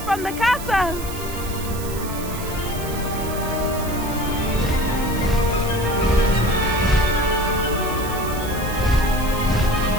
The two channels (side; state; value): right; noise; hiss, 12 dB below the sound